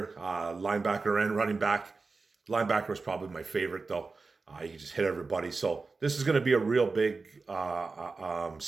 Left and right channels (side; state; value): left; quieter; 4.1 dB